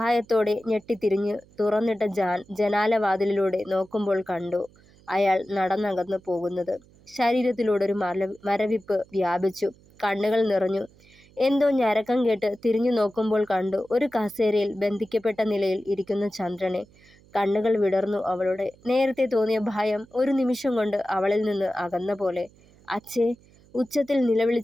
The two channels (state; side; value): noise; right; hum, 28 dB below the sound